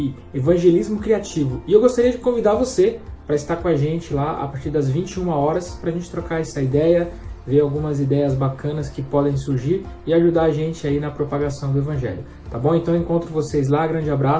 evangelismo criativo. E eu gostaria de convidar você para estar com a gente lá a partir das 21 horas para a gente trocar essa ideia, ver algumas ideias bacanas que podem surgir e ajudar a gente aí na propagação do Evangelho. Tá bom? Então eu encontro vocês lá, grande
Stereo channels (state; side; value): identical; both; correlation 1.00